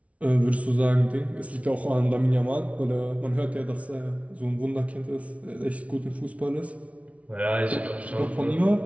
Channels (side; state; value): left; late; 0.065 ms